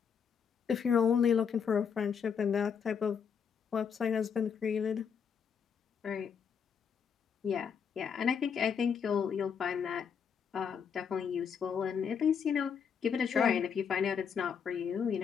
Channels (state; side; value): quieter; right; 6.9 dB